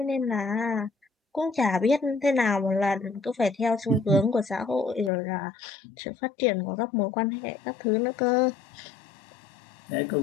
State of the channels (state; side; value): drops out; right; at 5.1 s